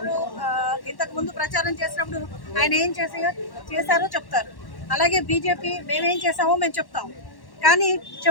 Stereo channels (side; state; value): right; late; 1.1 ms